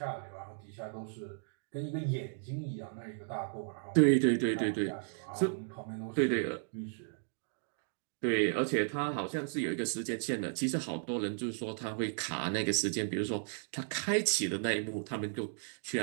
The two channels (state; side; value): silent; left; digital silence